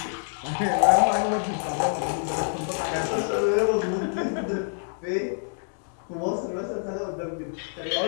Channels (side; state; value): right; silent; digital silence